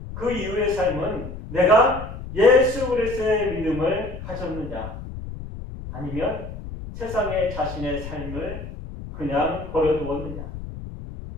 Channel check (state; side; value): noise; left; rumble, 10 dB below the sound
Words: 그 이후의 삶은 내가 예수 그리스도의 믿음을 가졌느냐 아니면 세상에 자신의 삶을 그냥 버려두었느냐,